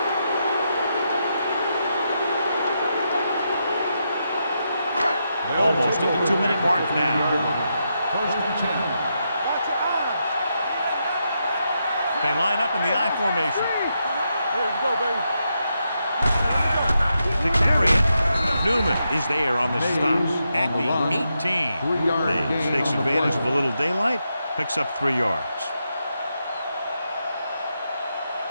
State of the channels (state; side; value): inverted; both; correlation -0.83